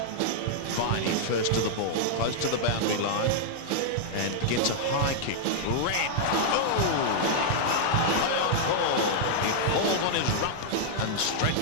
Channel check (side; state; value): both; different; correlation -0.01